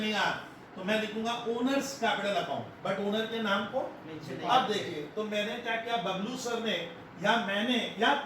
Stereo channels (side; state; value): both; identical; correlation 1.00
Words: तो मैं लिखूंगा owners capital account, but owner के नाम को अब देखिए, तो मैंने क्या किया, बबलू सर ने या मैंने या